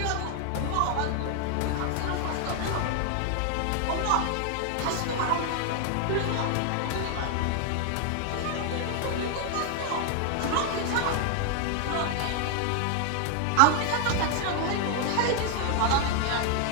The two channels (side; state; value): both; different; correlation 0.01